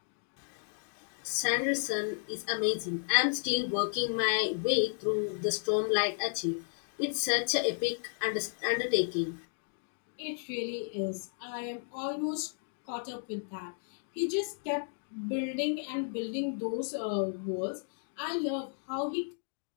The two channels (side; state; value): right; silent; digital silence